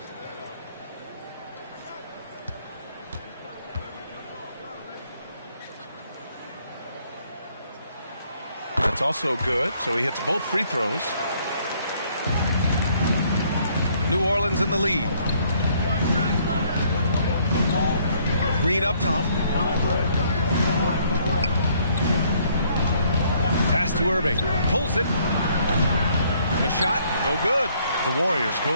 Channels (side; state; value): both; inverted; correlation -0.65